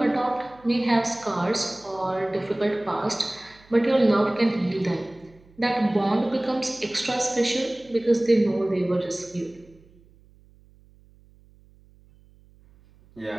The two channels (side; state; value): right; noise; hum, 28 dB below the sound